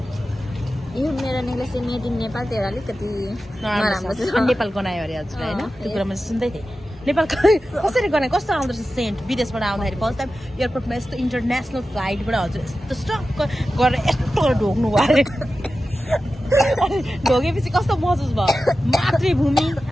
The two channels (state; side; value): normal; both; correlation 0.93